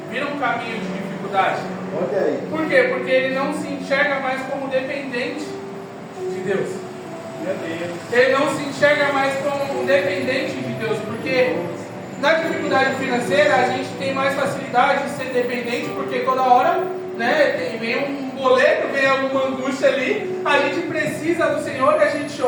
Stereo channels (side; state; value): both; identical; correlation 1.00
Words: vira um caminho de dificuldade. Olha aí. Por quê? Porque ele não se enxerga mais como dependente de Deus. Ele não se enxerga mais como dependente de Deus, porque na dificuldade financeira a gente tem mais facilidade de ser dependente, porque toda hora, né, vem um boleto, vem alguma angústia ali, a gente precisa do Senhor e a gente